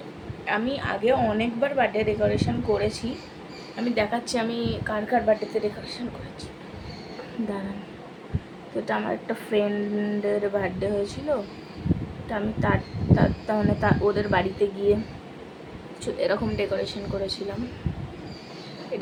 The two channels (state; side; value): identical; both; correlation 1.00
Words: আমি আগে অনেকবার বার্থডে ডেকোরেশন করেছি। আমি দেখাচ্ছি আমি কার কার বার্থডেতে ডেকোরেশন করেছি, দাঁড়ান। তো এটা আমার একটা ফ্রেন্ডের বার্থডে হয়েছিল। তো আমি তার মানে ওদের বাড়িতে গিয়ে এরকম ডেকোরেশন করেছিলাম। এই